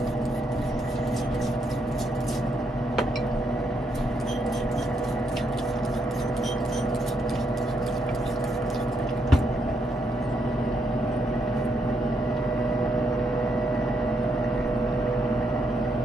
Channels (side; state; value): both; normal; correlation 0.77